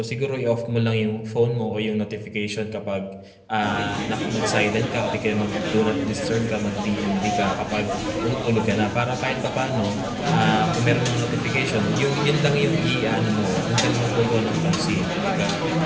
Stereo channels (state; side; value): identical; both; correlation 1.00